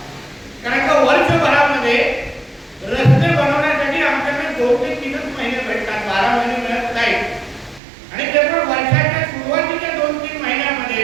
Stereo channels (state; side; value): drops out; left; at 7.8 s